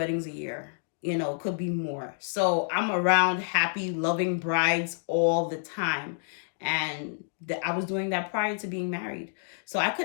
a year. You know, could be more. So I'm around happy, loving brides all the time. And I was doing that prior to being married. So I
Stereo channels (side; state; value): right; silent; digital silence